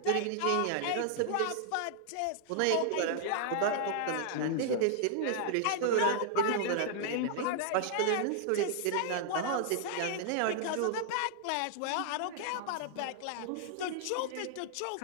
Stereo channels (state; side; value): different; both; correlation -0.01